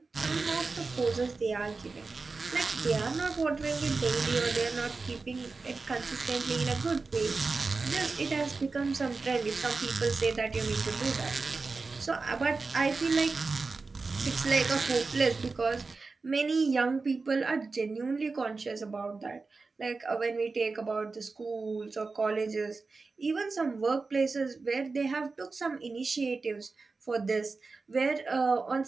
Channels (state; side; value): quieter; left; 4.1 dB